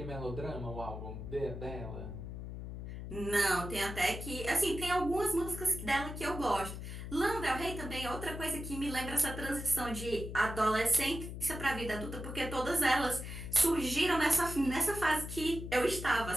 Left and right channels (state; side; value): noise; left; hum, 8 dB below the sound